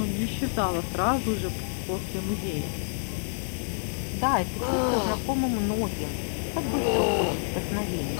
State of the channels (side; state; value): right; silent; digital silence